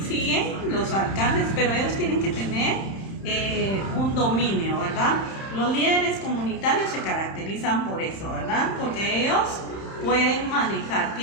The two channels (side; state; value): right; late; 31 ms